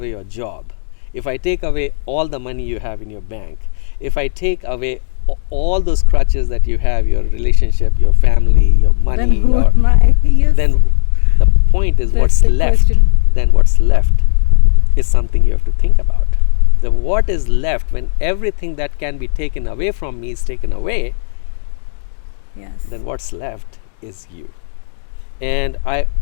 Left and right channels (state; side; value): silent; right; digital silence